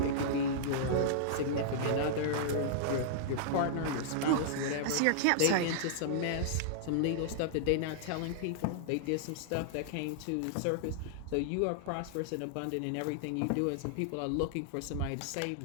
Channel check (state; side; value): different; both; correlation -0.02